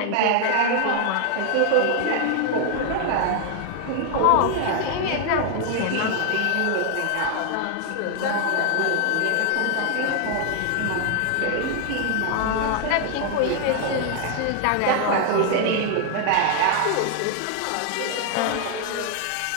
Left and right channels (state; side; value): different; both; correlation 0.00